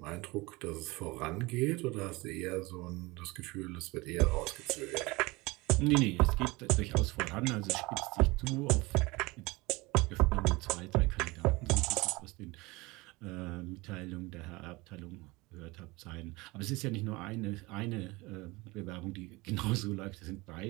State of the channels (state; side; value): quieter; left; 23.1 dB